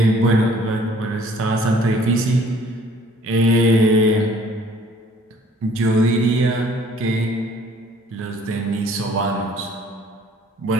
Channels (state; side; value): normal; both; correlation 0.56